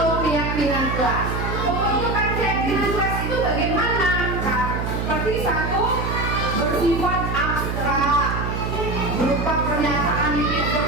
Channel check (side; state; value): right; noise; hum, 2 dB below the sound